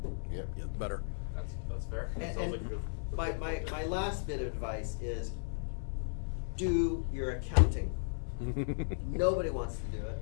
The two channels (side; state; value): right; silent; digital silence